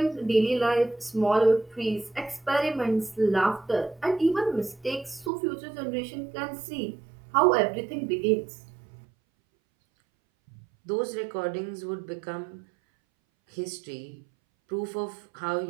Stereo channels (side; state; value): left; drops out; at 5.3 s